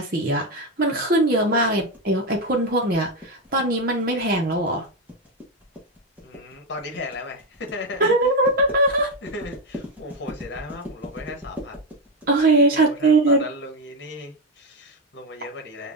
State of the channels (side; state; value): both; normal; correlation 0.11